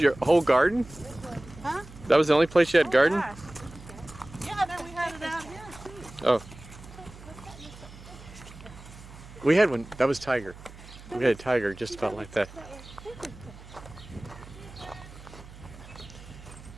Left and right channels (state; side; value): noise; right; hum, 17 dB below the sound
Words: your whole garden? Huh? That was the only place you had garden? Gosh. Yeah, then we had it out here too. Oh. We had one. That was Tiger. We had a tiger just about like that.